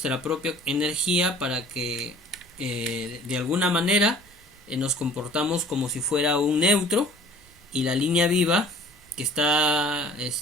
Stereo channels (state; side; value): normal; both; correlation 0.49